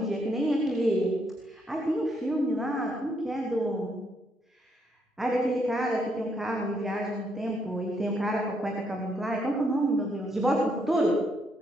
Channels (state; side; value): normal; both; correlation 0.75